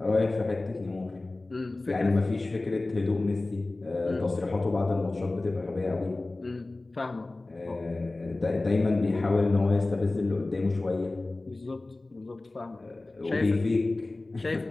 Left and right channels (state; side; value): quieter; right; 3.0 dB